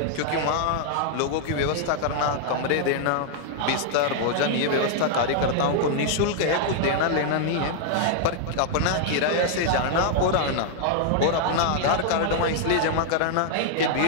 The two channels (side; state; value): both; different; correlation -0.01